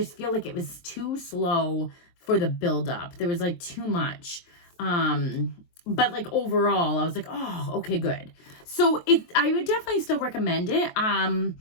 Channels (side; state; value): right; late; 23 ms